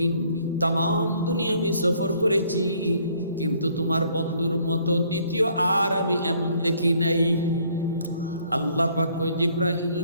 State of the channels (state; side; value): inverted; both; correlation -0.63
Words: তাম দুনিয়া আমি সফর করেছি, কিন্তু তোমার বন্ধুর মতো দ্বিতীয় আর আমি এমন দেখি নাই। আল্লাহ পাক কয় জিব্রাইল